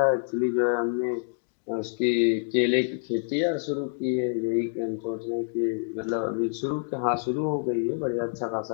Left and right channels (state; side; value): silent; right; digital silence